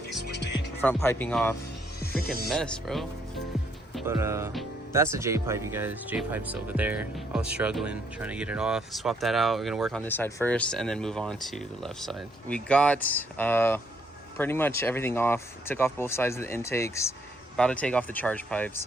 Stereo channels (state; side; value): normal; both; correlation 0.70